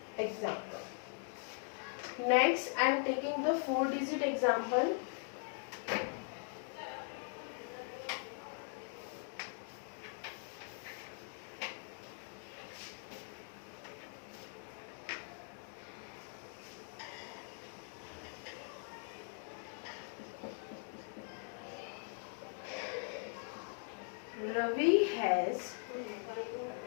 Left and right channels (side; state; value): right; silent; 50 dB below the other